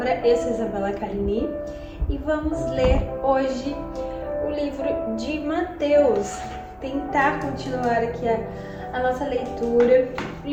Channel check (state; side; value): identical; both; correlation 1.00